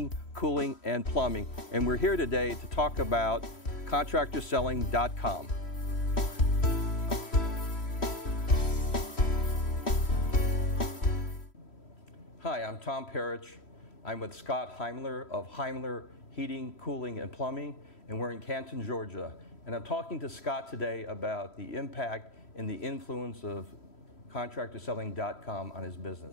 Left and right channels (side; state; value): right; late; 3.1 ms